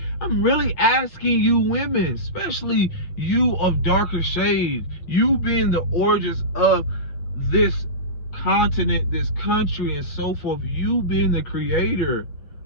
I'm really asking you women, especially you of darker shade, you being the origins of this continent, this country, and so forth, you being the creator,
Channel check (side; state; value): right; late; 8.4 ms